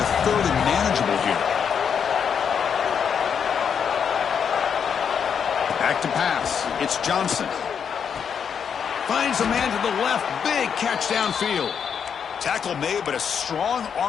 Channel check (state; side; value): quieter; right; 7.3 dB